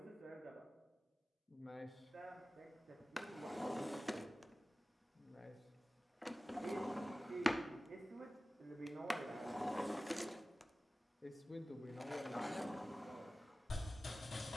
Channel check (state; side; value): normal; both; correlation 0.96